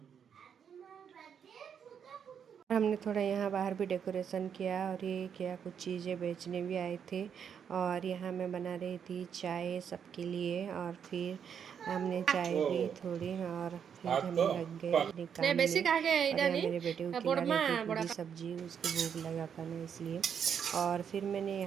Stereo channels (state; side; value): quieter; left; 7.7 dB